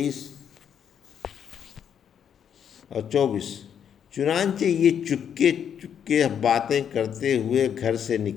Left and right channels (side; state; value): right; quieter; 8.5 dB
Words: اور 24، چنانچہ یہ چپکے چپکے باتیں کرتے ہوئے گھر سے